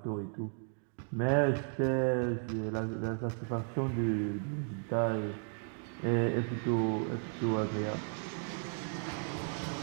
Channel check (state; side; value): silent; left; 55 dB below the other